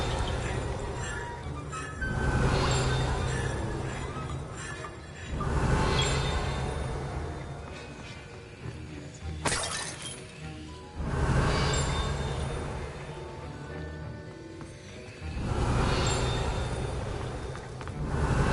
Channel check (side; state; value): both; identical; correlation 1.00